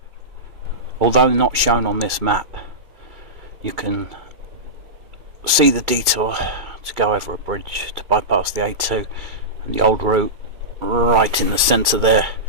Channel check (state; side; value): late; left; 2.3 ms